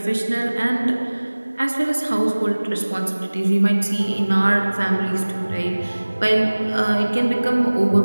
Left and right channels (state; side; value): inverted; both; correlation -1.00